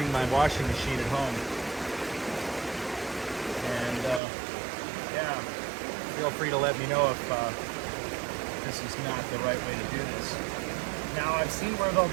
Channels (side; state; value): left; drops out; at 4.2 s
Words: my washing machine at home. And yeah, feel free to let me know if this is not the right way to do this. Now I've seen where they'll